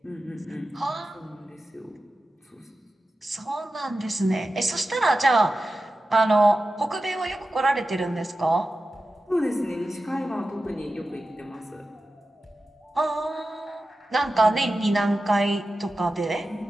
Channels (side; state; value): both; normal; correlation 0.93